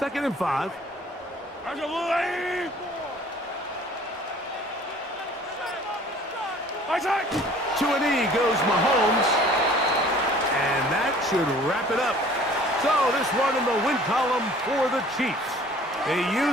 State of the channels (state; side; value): normal; both; correlation 0.51